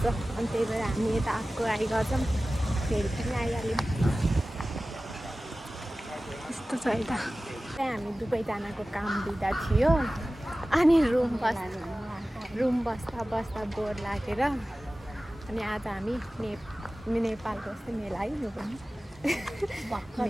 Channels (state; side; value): normal; both; correlation 0.96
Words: अनि त्यही भएर हामी यता आइगर्छौँ, फेरि पनि आइहाल्यौँ। यस्तो छ यता। त्यहाँ हामी दुवैजनाको काम दिँदा थियो। अनि रुम बस्दा बस्दा बोर लागेर अनि आज हामी नेपालको यस्तै मेला है, यो पनि